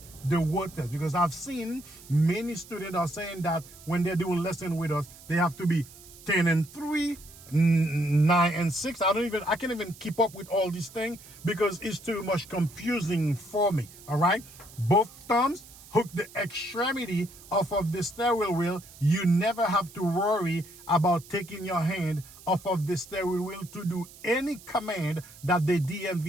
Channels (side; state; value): right; noise; hiss, 20 dB below the sound